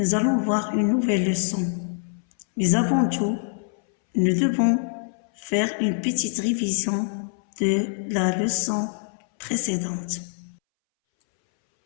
allons voir une nouvelle leçon. Mais avant tout, nous devons faire une petite révision de la leçon précédente.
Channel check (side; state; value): right; silent; 62 dB below the other